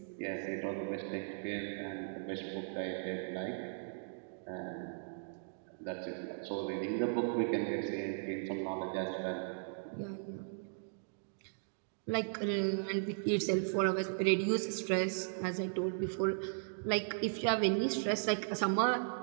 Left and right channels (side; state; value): left; silent; digital silence